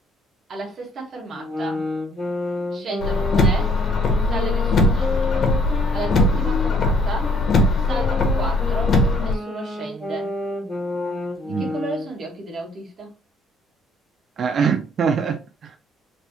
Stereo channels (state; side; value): normal; both; correlation 0.61